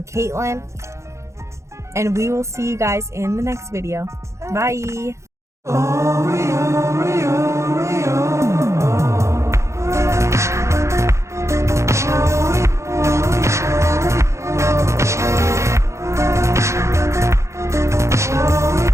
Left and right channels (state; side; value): late; left; 0.14 ms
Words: Kaitlyn. and we will see you guys in the next video. Bye. Oh, we are.